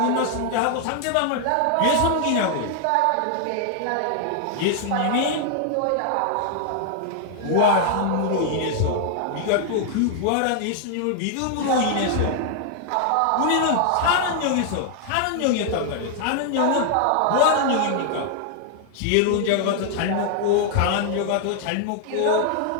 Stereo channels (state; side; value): different; both; correlation 0.00